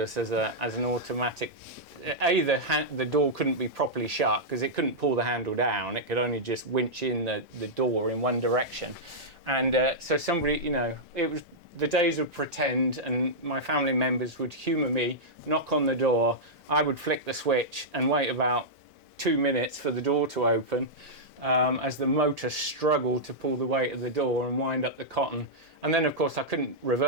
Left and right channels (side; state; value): both; normal; correlation -0.09